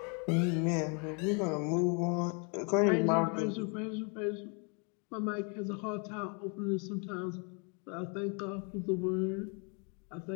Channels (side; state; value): right; quieter; 35.8 dB